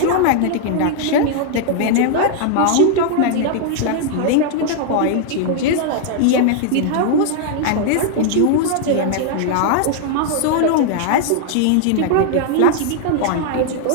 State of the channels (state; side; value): different; both; correlation 0.00